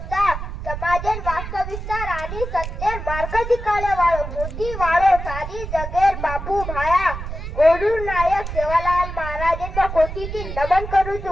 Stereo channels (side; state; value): right; noise; rumble, 7 dB below the sound